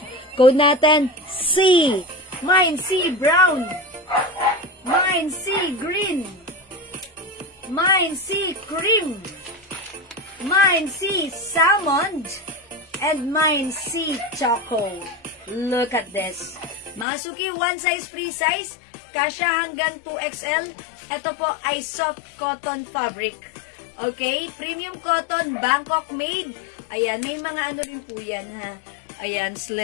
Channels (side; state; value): right; drops out; at 17.1 s